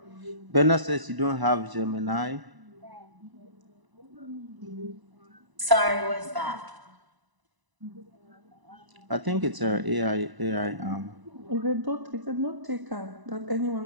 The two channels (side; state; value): left; late; 1.0 ms